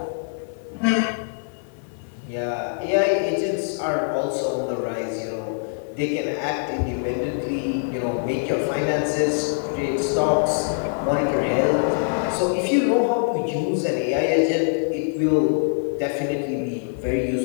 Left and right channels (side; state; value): right; silent; 56 dB below the other